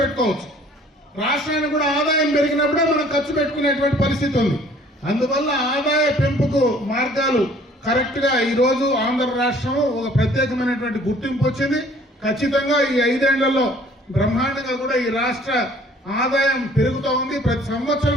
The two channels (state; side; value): normal; both; correlation 0.55